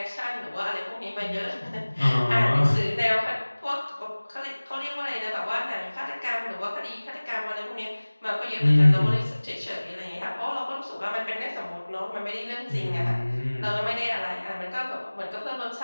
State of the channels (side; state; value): both; inverted; correlation -1.00